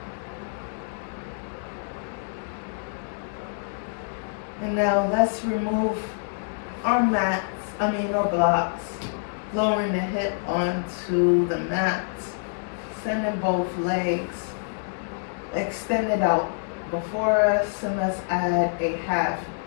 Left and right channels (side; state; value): right; silent; digital silence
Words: And now let's remove our our blocks, lowering the hip onto the mat, sending both legs extended out before us, and let's add a half